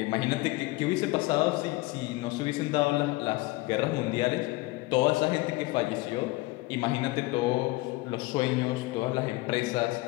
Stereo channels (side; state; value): right; quieter; 21.4 dB